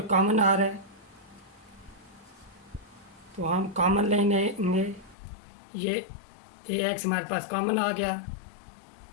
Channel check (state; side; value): drops out; right; at 5.2 s